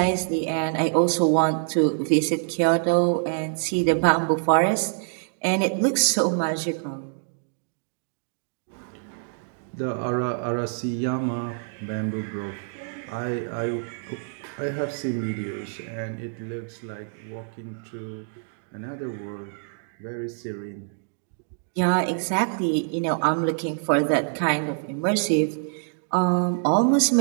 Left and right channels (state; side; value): silent; left; 61 dB below the other